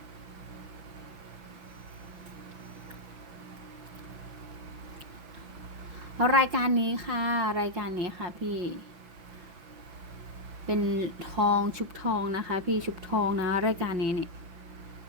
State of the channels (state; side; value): late; left; 5.9 ms